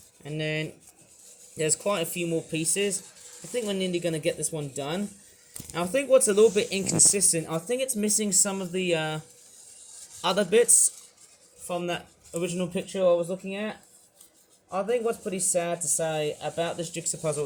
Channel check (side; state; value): both; identical; correlation 1.00